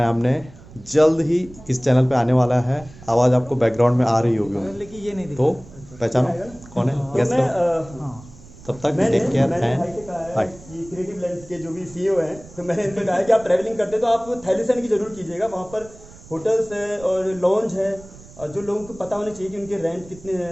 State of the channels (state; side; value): noise; right; rumble, 20 dB below the sound